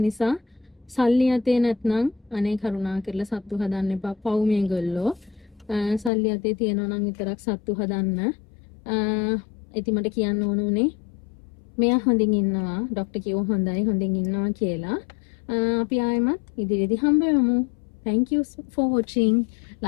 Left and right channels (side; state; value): right; drops out; at 6.1 s